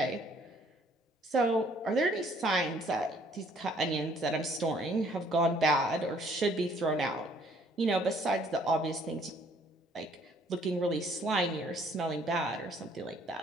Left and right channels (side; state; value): both; normal; correlation 0.61